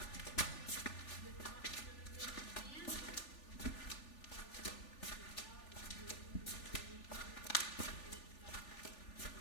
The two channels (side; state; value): right; late; 3.4 ms